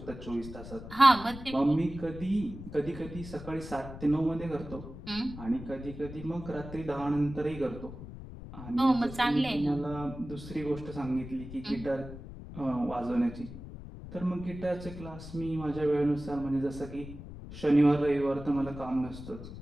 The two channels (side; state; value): left; noise; rumble, 12 dB below the sound